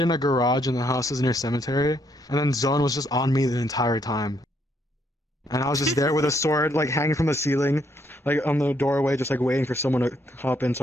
a garage in the houses near cemetery, and then Zone was just on me the entire time. And I was just there with a sword, like hanging from the ceiling, like on the doorway, just like waiting for someone to hop in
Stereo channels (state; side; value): normal; both; correlation 0.72